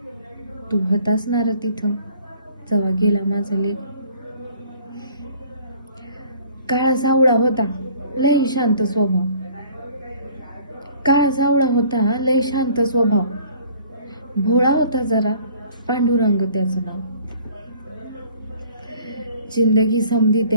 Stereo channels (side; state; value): both; inverted; correlation -0.54